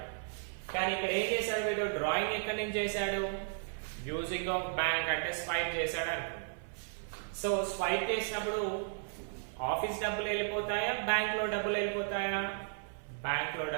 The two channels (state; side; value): silent; left; 55 dB below the other